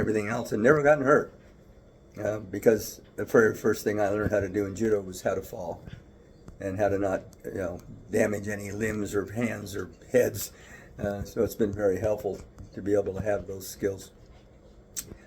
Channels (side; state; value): both; identical; correlation 1.00